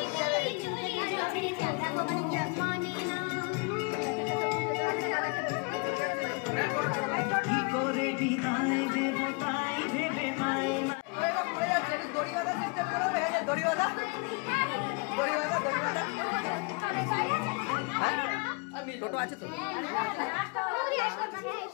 টোটো আছে তো?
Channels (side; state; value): right; quieter; 32.2 dB